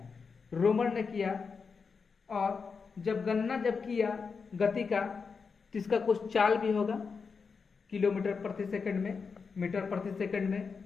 रोमर ने किया, और जब गणना जब किया गति का, तो इसका कुछ चाल भी होगा, किलोमीटर प्रति सेकंड में, मीटर प्रति सेकंड में,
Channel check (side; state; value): right; quieter; 5.3 dB